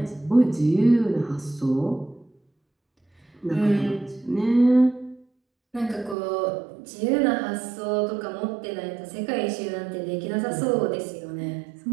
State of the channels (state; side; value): drops out; left; at 6.2 s